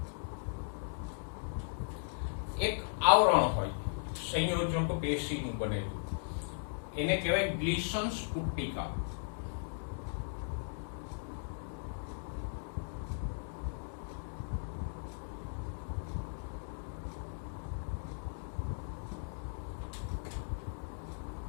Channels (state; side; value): silent; right; digital silence